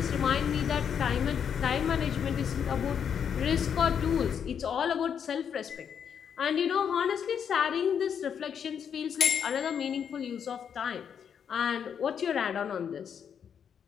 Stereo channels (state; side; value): quieter; right; 7.8 dB